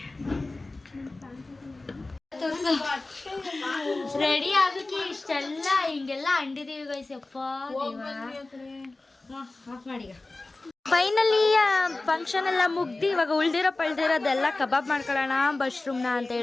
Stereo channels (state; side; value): quieter; right; 3.1 dB